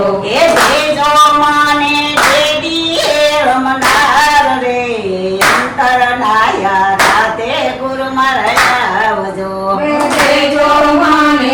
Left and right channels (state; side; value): identical; both; correlation 1.00